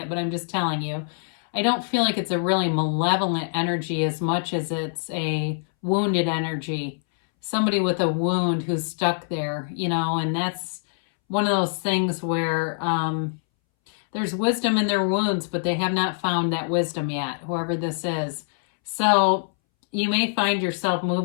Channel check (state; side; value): silent; right; 62 dB below the other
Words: but I'm just telling you. I don't feel like it's a really malevolent energy as much as it's a wounded energy. Somebody with a wound who's stuck there, and that's one of those things where there's wisdom in their wounds, but they have not found that wisdom yet, whoever this is. So you may find yourself